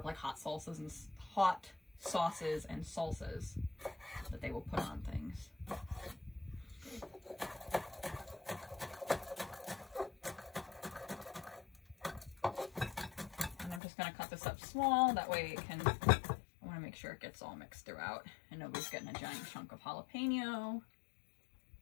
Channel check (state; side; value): drops out; right; at 13.8 s